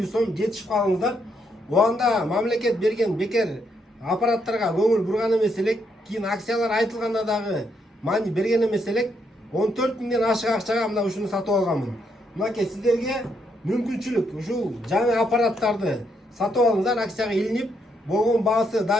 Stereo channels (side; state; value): both; normal; correlation 0.76